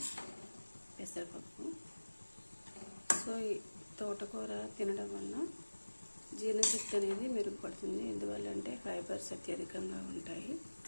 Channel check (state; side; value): inverted; both; correlation -1.00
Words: పెసరపప్పు. సో ఈ తోటకూర తినడం వల్ల జీర్ణశక్తి అనేది మెరుగుపడుతుంది. ఎందువల్లంటే ఫైబర్స్ అత్యధికంగా ఉంటాయి.